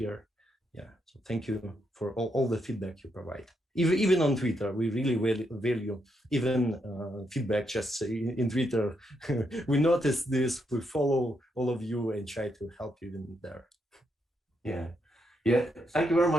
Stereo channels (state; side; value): normal; both; correlation 0.79